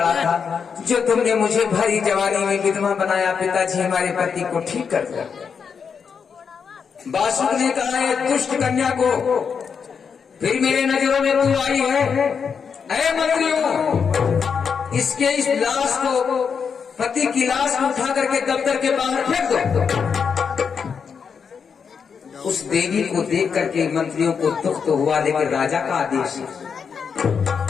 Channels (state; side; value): quieter; right; 6.3 dB